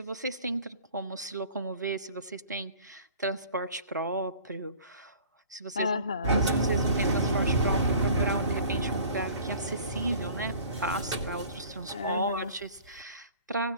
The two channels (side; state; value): both; inverted; correlation -0.47